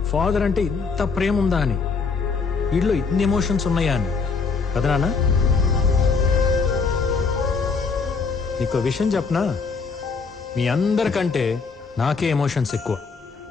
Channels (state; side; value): quieter; right; 4.8 dB